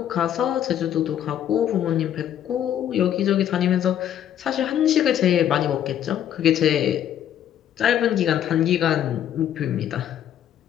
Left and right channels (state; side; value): quieter; right; 10.4 dB